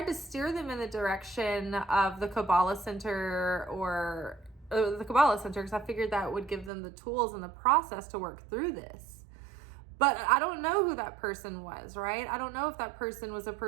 to steer them in the direction of the Kabbalah Center or the Kabbalah Center, because I figured that would give them the tools and the process to work through this. But I don't know who that person was, right? I don't know if that person was a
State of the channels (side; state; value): left; drops out; at 6.7 s